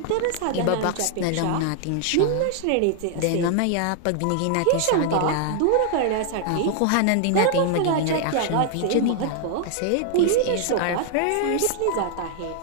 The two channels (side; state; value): both; different; correlation 0.00